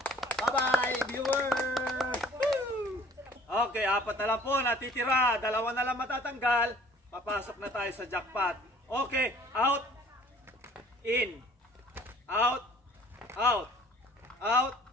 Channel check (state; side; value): normal; both; correlation 0.53